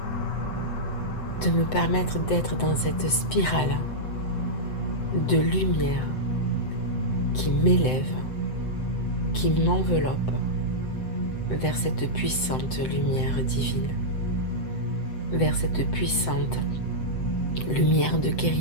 de me permettre d'être dans cette spirale de lumière qui m'élève, qui m'enveloppe vers cette puissante lumière divine, vers cette puissante lumière de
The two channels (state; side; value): late; right; 7.8 ms